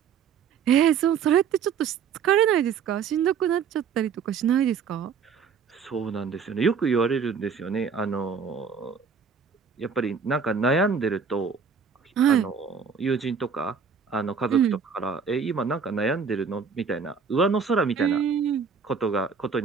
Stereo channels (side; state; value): left; quieter; 6.3 dB